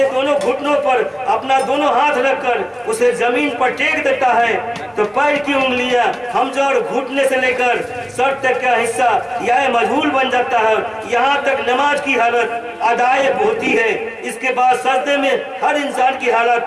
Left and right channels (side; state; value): both; identical; correlation 1.00